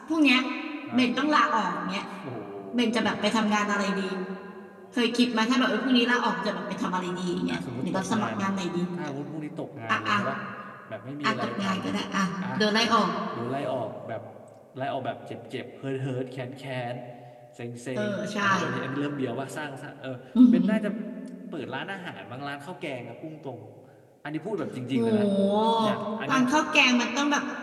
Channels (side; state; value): both; identical; correlation 1.00